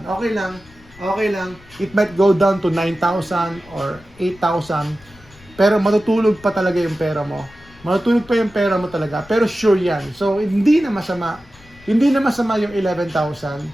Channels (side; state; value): left; noise; rumble, 24 dB below the sound